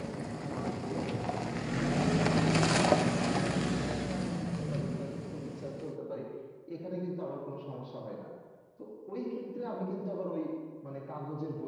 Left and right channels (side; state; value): both; identical; correlation 1.00